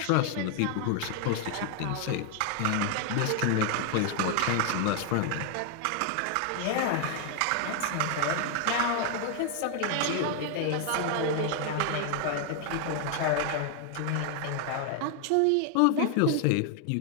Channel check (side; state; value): both; different; correlation 0.00